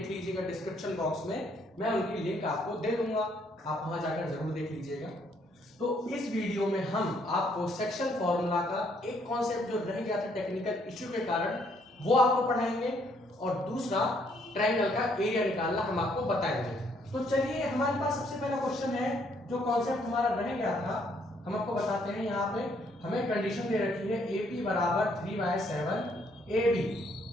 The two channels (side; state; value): both; normal; correlation 0.68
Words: लीजिएगा, डिस्क्रिप्शन बॉक्स में मैं उनकी लिंक आपको दे दूंगा, आप वहां जाकर जरूर देख लीजिएगा। तो इस वीडियो में हम आपको सेक्शन फार्मूला का एक कॉन्सेप्ट जो रह गया था टेक्निकल इश्यू के कारण वो आपको पढ़ाएंगे और दूसरा ट्रायंगल का एरिया निकालना हम आपको बताएंगे। तो चलिए, हमारे पास सबसे पहला क्वेश्चन है जो कॉन्सेप्ट हमारा रह गया था, हम आपको बताते हैं। यहाँ पे हमें कंडीशन दे रखी है AP बराबर 3/7 AB,